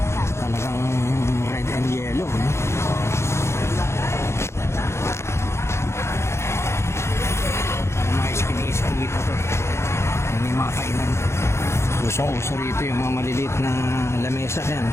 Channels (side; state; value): right; late; 0.13 ms